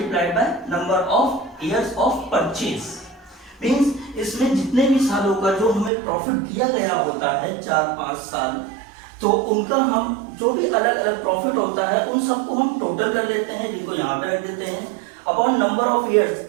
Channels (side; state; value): left; drops out; at 5.9 s